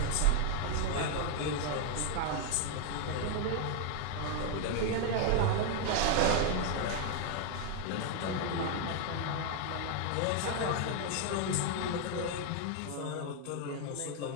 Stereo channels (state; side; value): different; both; correlation 0.00